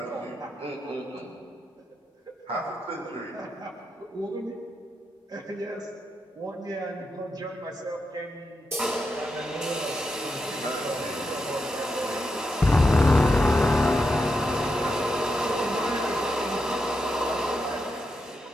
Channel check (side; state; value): both; normal; correlation 0.86